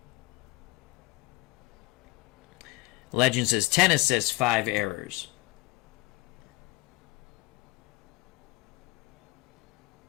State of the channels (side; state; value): right; quieter; 21.3 dB